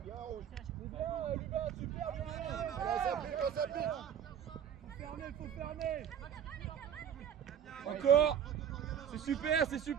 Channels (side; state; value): left; quieter; 8.9 dB